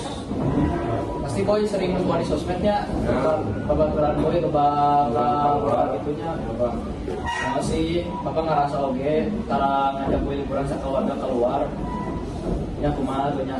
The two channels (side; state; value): both; identical; correlation 1.00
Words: pasti boy sering nonton di sosmednya babaturan boy bakal itunya masih bapak ngerasa oke tara ngajak boy liburan keluarga keluar ya kumaha tuhnya